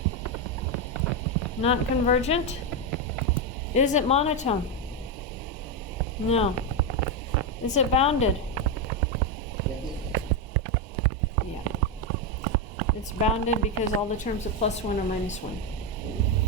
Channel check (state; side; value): normal; both; correlation 0.06